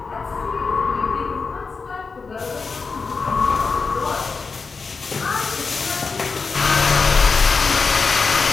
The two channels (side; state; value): right; quieter; 4.7 dB